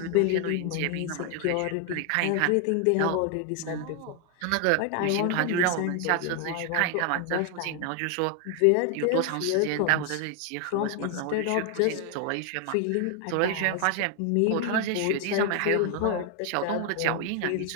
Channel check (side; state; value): both; different; correlation 0.01